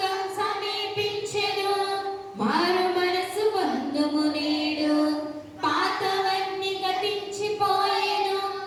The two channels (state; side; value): identical; both; correlation 1.00